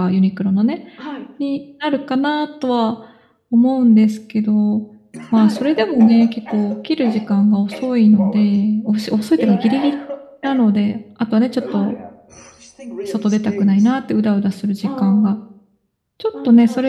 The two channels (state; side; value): identical; both; correlation 1.00